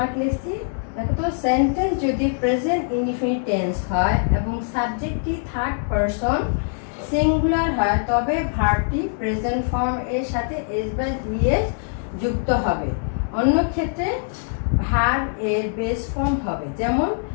লিখছি, দেখো তো, সেন্টেন্স যদি প্রেজেন্ট ইনডিফিনিট টেন্স হয় এবং সাবজেক্টটি থার্ড পারসন সিঙ্গুলার হয় তবে ভার্বটি প্রেজেন্ট ফর্ম এর সাথে এস বা ইএস যুক্ত হবে। অন্য ক্ষেত্রে ভার্ব এর বেস ফর্ম হবে। যেমন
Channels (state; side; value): silent; right; digital silence